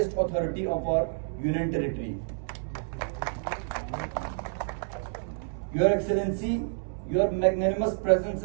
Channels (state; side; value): silent; left; 59 dB below the other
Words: authority of our union territory. Your Excellency, your magnanimous presence